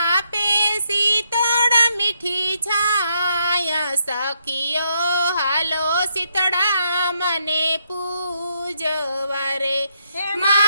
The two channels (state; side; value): inverted; both; correlation -0.76